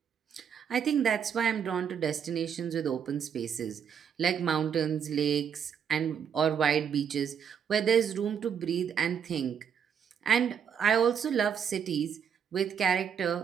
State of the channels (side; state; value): left; quieter; 7.6 dB